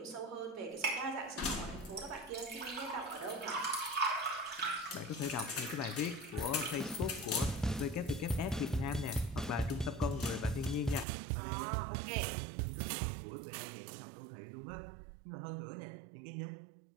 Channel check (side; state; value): left; drops out; at 11.1 s